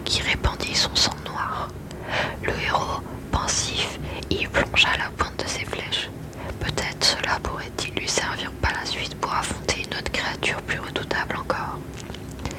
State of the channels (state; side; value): identical; both; correlation 1.00